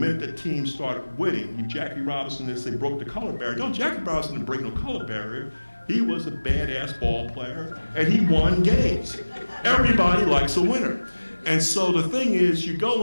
that teams started winning, Jackie Robinson, they broke the color barrier. No, Jackie Robinson didn't break no color barrier. He was a badass ball player and he won games. Everybody likes a winner. And so the thing is, you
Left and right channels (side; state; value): both; inverted; correlation -1.00